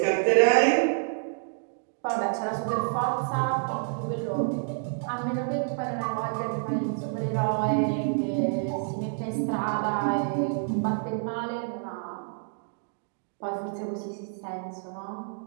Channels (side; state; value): left; silent; digital silence